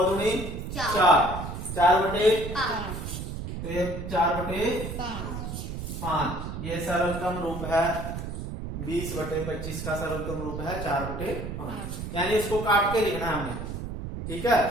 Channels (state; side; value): noise; right; rumble, 6 dB below the sound